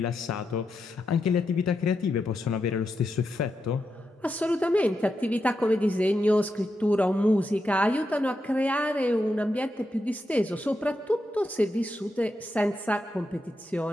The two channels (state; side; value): normal; both; correlation 0.86